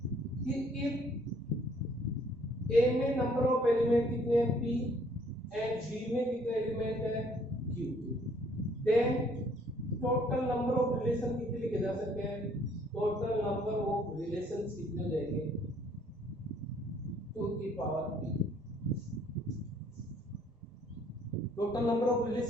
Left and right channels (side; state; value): both; normal; correlation 0.61